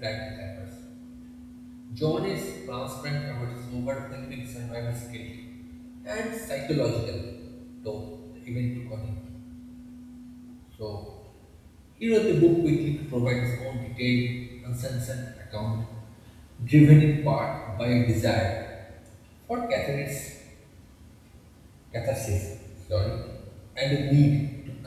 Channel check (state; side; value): identical; both; correlation 1.00